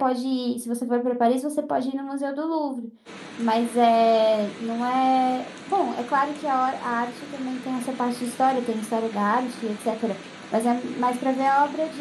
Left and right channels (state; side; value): identical; both; correlation 1.00